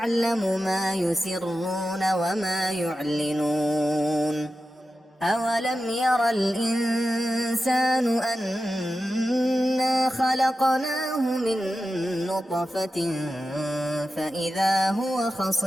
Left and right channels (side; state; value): both; normal; correlation 0.92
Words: ما يسرون وما يعلنون أولم ير الإنسان أنا خلقناه من نطفة فإذا هو